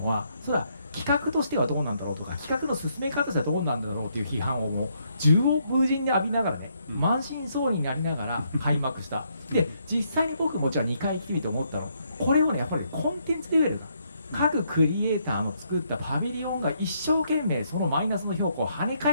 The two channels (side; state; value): both; inverted; correlation -0.74